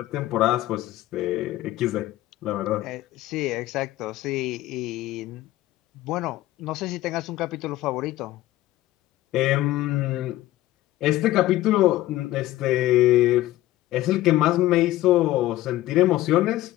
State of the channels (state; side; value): quieter; right; 15.8 dB